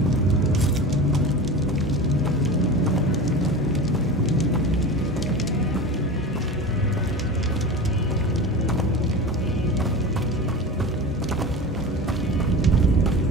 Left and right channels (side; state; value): both; normal; correlation 0.30